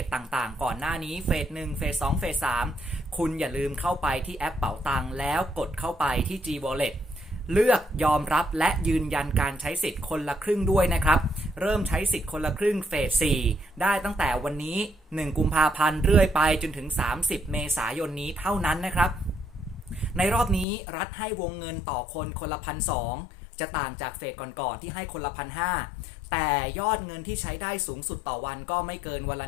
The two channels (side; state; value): right; drops out; at 20.7 s